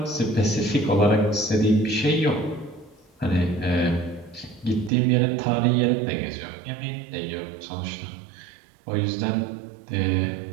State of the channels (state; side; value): drops out; left; at 4.9 s